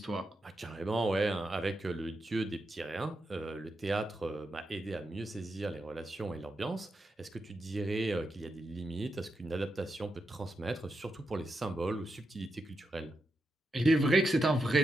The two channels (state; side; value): normal; both; correlation 0.86